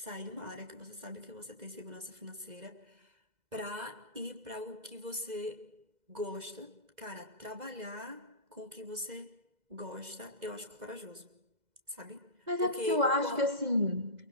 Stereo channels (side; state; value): left; late; 2.0 ms